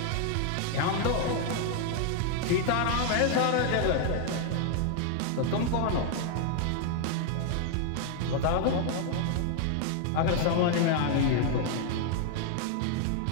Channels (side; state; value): both; different; correlation 0.00